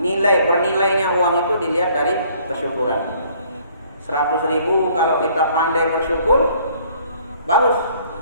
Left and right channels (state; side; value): inverted; both; correlation -0.60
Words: bernilainya uang itu dilihat dari kesyukuran. 100.000 kalau kita pandai bersyukur, bagus.